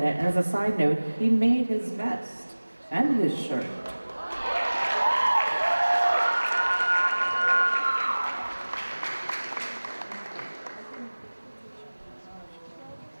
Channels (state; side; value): inverted; both; correlation -1.00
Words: it, and as a side note, he made his vest and his shirt.